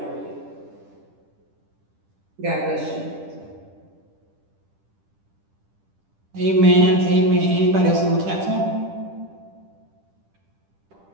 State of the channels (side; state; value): left; late; 10 ms